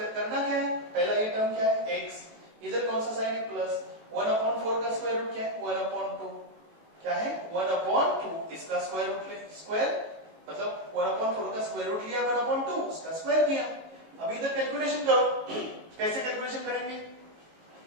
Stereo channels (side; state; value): left; late; 18 ms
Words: करना क्या है, पहला ये टर्म क्या है x, इधर कौन सा साइन है प्लस, 1/4 का स्क्वायर रूट क्या है 1/2, क्या है 1/2, इसका स्क्वायर रूट ले, स्क्वायर मतलब 1/4 का स्क्वायर रूट लिया 1/2, उसका स्क्वायर किया. अब इधर कैलकुलेशन करो, कैसे कैलकुलेशन करेंगे,